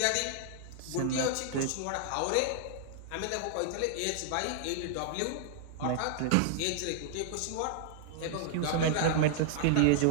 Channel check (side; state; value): both; different; correlation -0.01